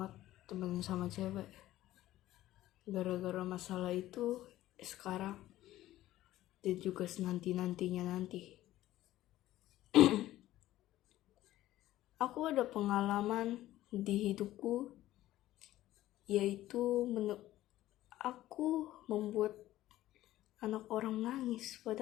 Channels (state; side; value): quieter; right; 14.8 dB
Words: temen sama cewek. Gara-gara masalah itu sekarang dan juga nanti aku ada pengalaman di hidupku, yaitu aku membuat anak orang nangis